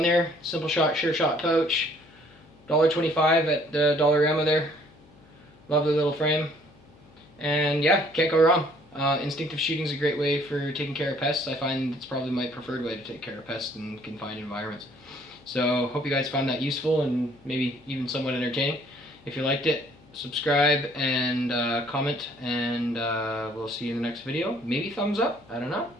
there. Simple shot, sure shot pouch. $1.25 at the Dollarama there. Lovely little frame. And yeah, can't go wrong. Instinctive shooting is a great way for taking care of pests. I find it's probably my preferred way to take care of pests in confined environments. So hope you guys found that useful and maybe even somewhat entertaining. If you liked it, subscribe and comment, and we'll see you in the next video. Maybe thumbs up, I don't know,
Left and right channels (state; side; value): noise; left; hum, 26 dB below the sound